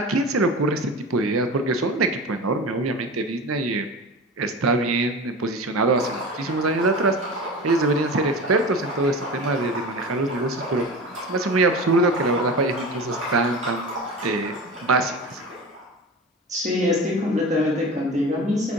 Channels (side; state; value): both; normal; correlation 0.32